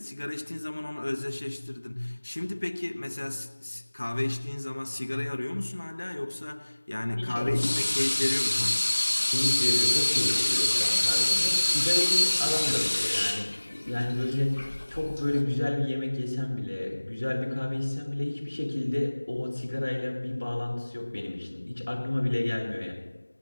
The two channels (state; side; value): inverted; both; correlation -1.00